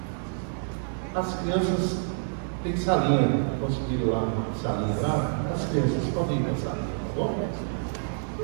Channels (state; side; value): silent; left; digital silence